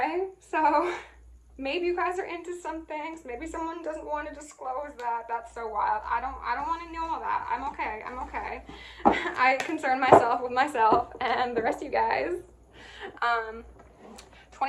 so maybe you guys are into some things. Maybe someone doesn't want to disclose that. That's so wild. I don't want to know all that. I'm okay. I concern myself with myself and the rest of you guys.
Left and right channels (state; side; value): identical; both; correlation 1.00